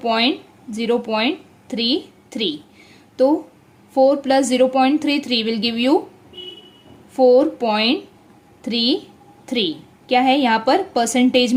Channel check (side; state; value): both; identical; correlation 1.00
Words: तो 4 प्लस 0.33 विल गिव यू 4.33। क्या है यहाँ पर परसेंटेज